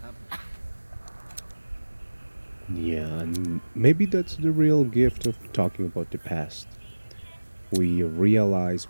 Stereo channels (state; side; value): inverted; both; correlation -1.00